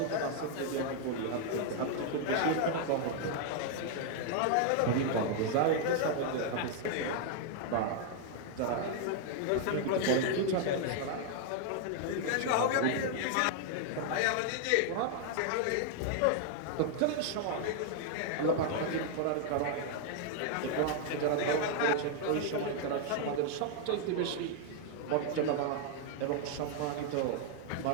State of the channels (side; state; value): both; different; correlation 0.00